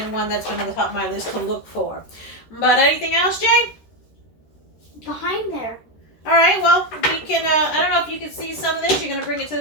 one that's been on the top of my list to look for. But anything else, Jay? Behind there. All right, well, we can, I don't know if you can see some of this. You're going to bring it to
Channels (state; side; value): late; right; 13 ms